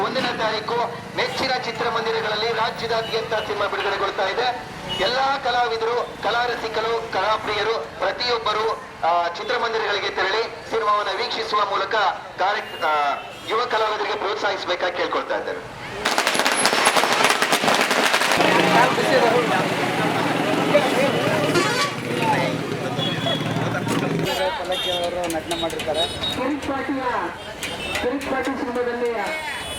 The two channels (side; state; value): both; identical; correlation 1.00